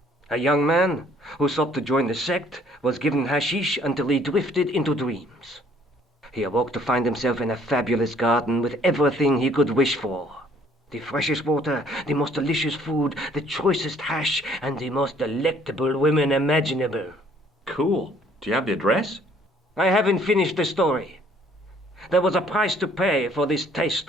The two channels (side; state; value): both; normal; correlation 0.60